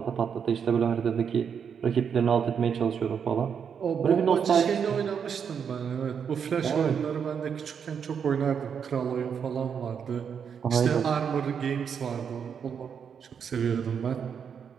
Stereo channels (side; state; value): left; quieter; 7.2 dB